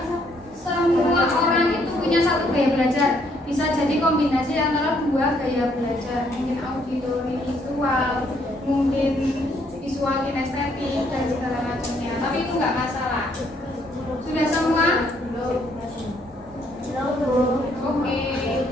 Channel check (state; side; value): normal; both; correlation 0.69